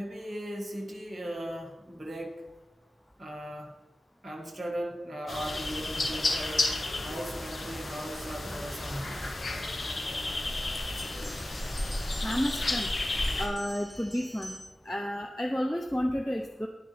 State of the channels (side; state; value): both; normal; correlation 0.95